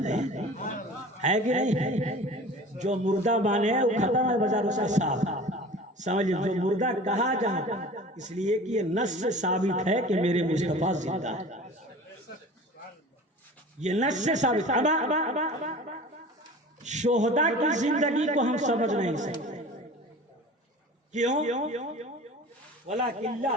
ہے کہ نہیں؟ جو مردہ مانے وہ ختم ہے بازار سے صاحب، سمجھے؟ جو مردہ کہا جاتا اس لیے کہ یہ نص سے ثابت ہے کہ میرے مصطفیٰ زندہ ہے، یہ نص سے ثابت ہے۔ شہداء کی زندگی کو ہم سمجھ نہیں سکتے، کیوں؟ وَلَكِنْ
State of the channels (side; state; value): both; normal; correlation 0.40